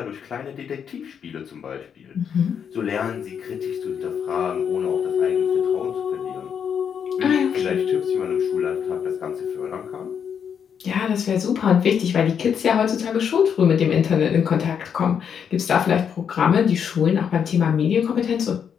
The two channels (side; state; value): right; quieter; 7.6 dB